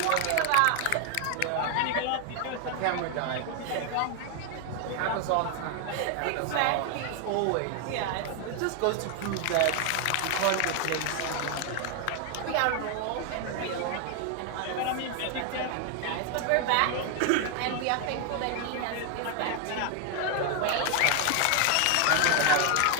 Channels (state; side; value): different; both; correlation 0.00